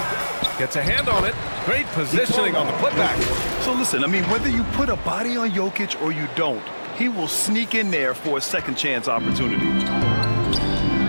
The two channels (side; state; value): both; inverted; correlation -1.00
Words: Gets a hand on it. Great positioning on the putback. So listen, I mean, whether you put a body on Jokic or you don't, he will sneak in there for a second chance opportunity.